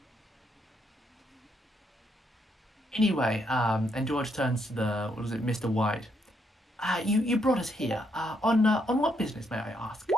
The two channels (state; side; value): normal; both; correlation 0.75